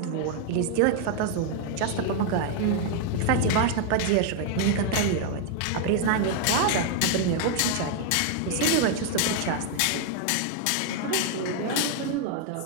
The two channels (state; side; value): different; both; correlation 0.00